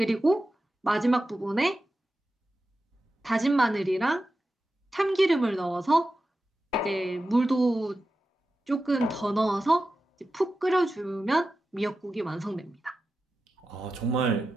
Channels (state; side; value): normal; both; correlation 0.92